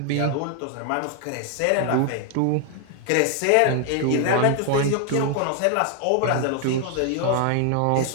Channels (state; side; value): different; both; correlation 0.00